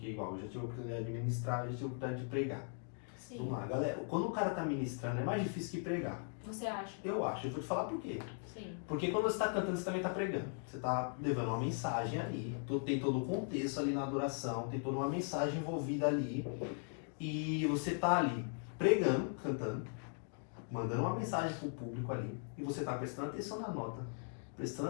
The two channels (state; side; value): silent; right; 52 dB below the other